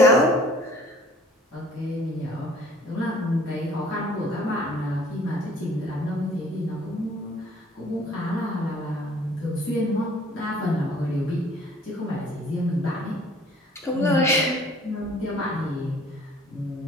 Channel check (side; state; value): both; normal; correlation 0.54